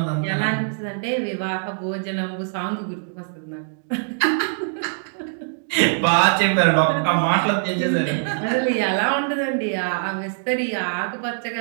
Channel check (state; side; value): silent; left; digital silence